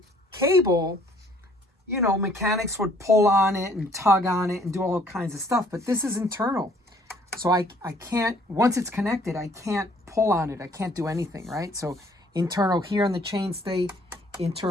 cable, mechanics would pull on it and tug on it and do all kinds of stuff, but this is internal. So I can't, once it's connected, I can't pull on it. I can't do anything, right? So internal here on the chainstay,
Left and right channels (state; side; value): normal; both; correlation 0.60